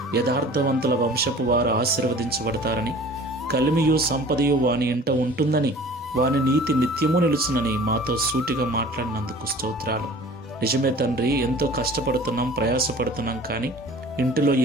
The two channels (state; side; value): normal; both; correlation 0.45